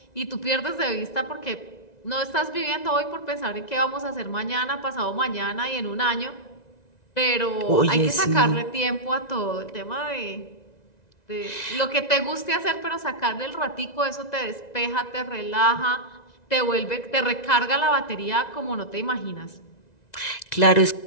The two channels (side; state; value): right; late; 1.9 ms